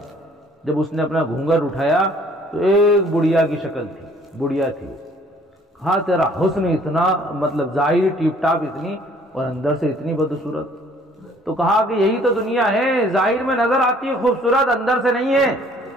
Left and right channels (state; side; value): normal; both; correlation 0.58